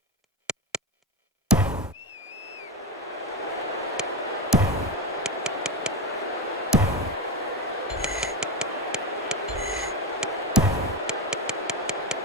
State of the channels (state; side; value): normal; both; correlation 0.16